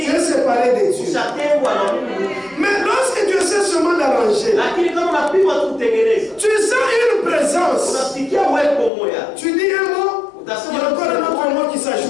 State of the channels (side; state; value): right; drops out; at 8.9 s